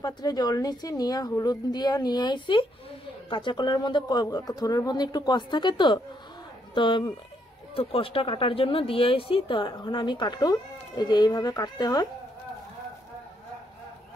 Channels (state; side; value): normal; both; correlation 0.74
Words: পাত্রে জল নিচ্ছি, নিয়ে হলুদ দিয়ে নিয়ে আইছি। কাঁচা কলার মধ্যে থোরের মধ্যে একটু কষ থাকে, তো তো তো কষটা কাটার জন্য দিয়ে আইছি। তো এখন আমি কাটু, এই যে এইভাবে কাটতে হয়